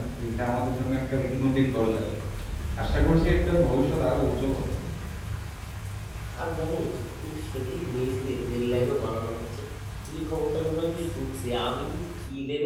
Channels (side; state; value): both; identical; correlation 1.00